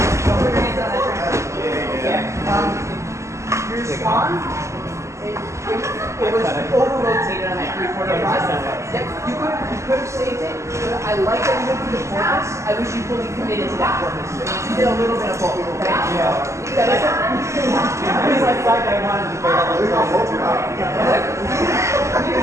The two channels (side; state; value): left; late; 0.14 ms